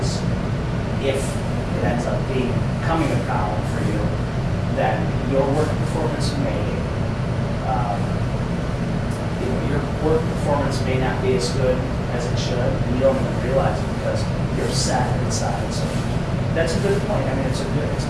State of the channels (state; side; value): identical; both; correlation 1.00